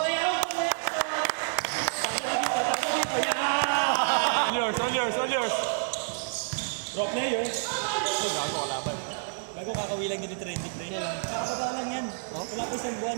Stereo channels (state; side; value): silent; left; 59 dB below the other